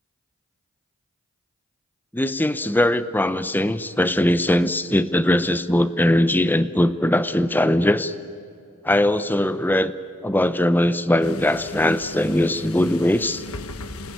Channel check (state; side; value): normal; both; correlation 0.82